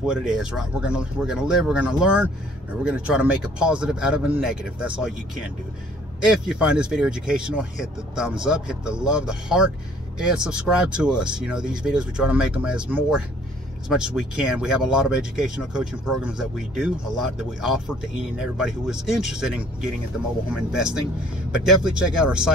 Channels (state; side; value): normal; both; correlation 0.57